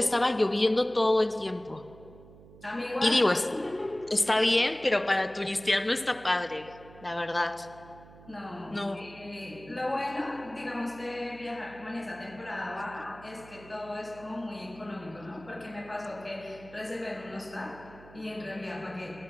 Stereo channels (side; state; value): right; noise; hum, 20 dB below the sound